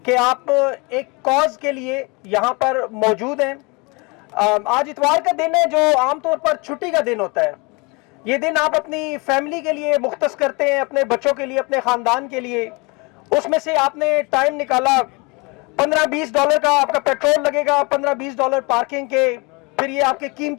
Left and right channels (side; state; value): right; quieter; 27.7 dB